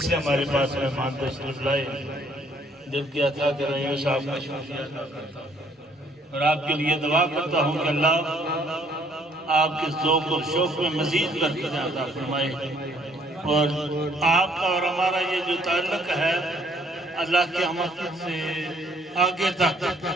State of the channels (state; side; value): normal; both; correlation 0.63